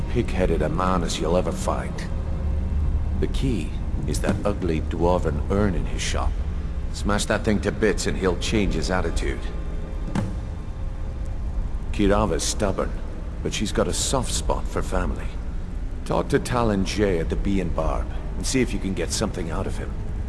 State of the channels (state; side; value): identical; both; correlation 1.00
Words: pig-headed a man as you'll ever find. The key is that ugly dwarven urn in his shop. Smash that thing to bits and he'll change his attitude. Kirava's stubborn, but she's got a soft spot for family. Talk to Talon Jay at the Bee and Barb, and see if you can get something out of him.